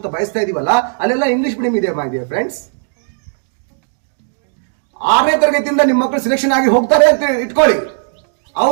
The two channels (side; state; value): left; silent; digital silence